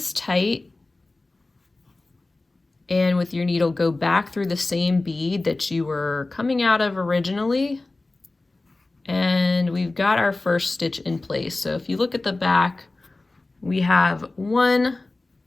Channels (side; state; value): right; quieter; 3.1 dB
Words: tight, and with your needle go back through the same bead that you were coming out of originally, and we've got our first stitch in place. So if you look at the back, we have one